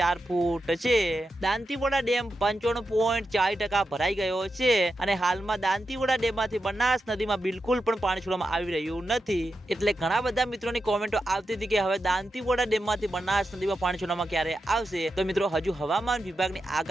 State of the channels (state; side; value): normal; both; correlation 0.88